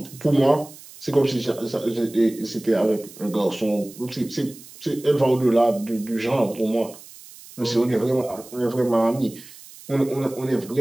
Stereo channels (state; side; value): noise; right; hiss, 19 dB below the sound